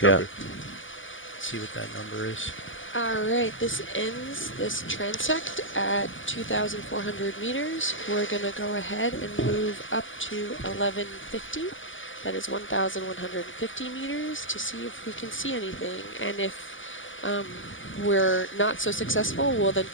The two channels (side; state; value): right; late; 0.57 ms